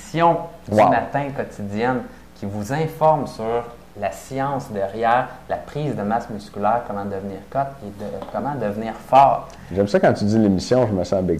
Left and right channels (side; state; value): both; identical; correlation 1.00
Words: du matin quotidienne qui vous informe sur la science derrière la prise de masse musculaire, comment devenir cut et comment devenir fort. J'aime ça quand tu dis l'émission, je me sens big